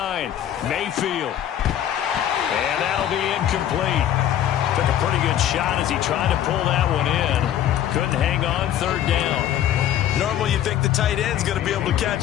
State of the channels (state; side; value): quieter; right; 11.1 dB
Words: Mayfield. And that'll be incomplete. Took a pretty good shot as he tried to pull that one in. Couldn't hang on, third down. Normally you think the tight end's going to be able to